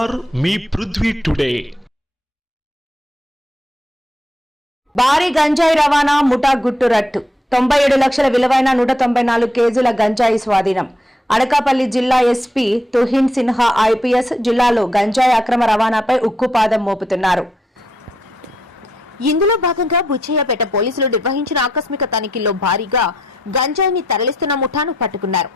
మీ పృథ్వీ టుడే. భారీ గంజాయి రవాణా ముఠా గుట్టు రట్టు. 97 లక్షల విలువైన 194 కేజీల గంజాయి స్వాధీనం. అనకాపల్లి జిల్లా ఎస్పీ తుహిన్ సిన్హా ఐపీఎస్ జిల్లాలో గంజాయి అక్రమ రవాణాపై ఉక్కుపాదం మోపుతున్నారు. ఇందులో భాగంగా బుచ్చయ్యపేట పోలీసులు నిర్వహించిన ఆకస్మిక తనిఖీల్లో భారీగా గంజాయిని తరలిస్తున్న ముఠాను పట్టుకున్నారు.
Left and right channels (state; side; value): normal; both; correlation 0.77